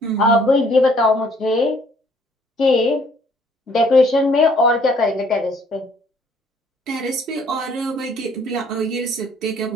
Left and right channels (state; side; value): normal; both; correlation 0.62